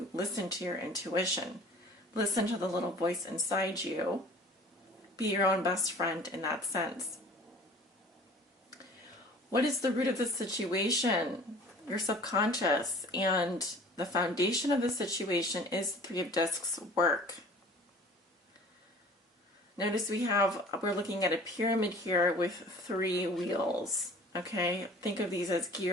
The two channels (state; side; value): normal; both; correlation 0.46